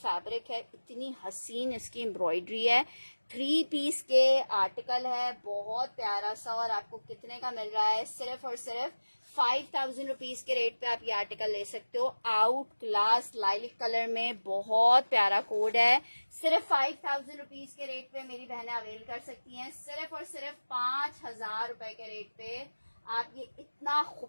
है, इतनी हसीन इसकी एम्ब्रॉयडरी है। 3 पीस के आर्टिकल है, बहुत प्यारा सा। और आपको कितने का मिल रहा है? सिर्फ और सिर्फ 5000 रुपीज के रेट पे आप ये आर्टिकल ले सकते हो। आउट क्लास लाइलिक कलर में, बहुत प्यारा कोड है। सिर्फ 5000 रुपीज के रेट पे मेरी बहनें अवेल कर सकती हैं। सिर्फ और सिर्फ 5000 रुपए के रेट पे आप ये इतना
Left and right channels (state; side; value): inverted; both; correlation -1.00